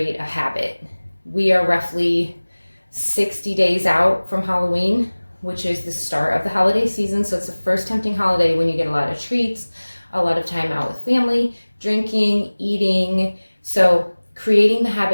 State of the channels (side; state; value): both; inverted; correlation -1.00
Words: a habit. We are roughly 60 days out from Halloween, which is the start of the holiday season. So it's the first tempting holiday when you get a lot of treats, a lot of time out with family, drinking, eating. So creating the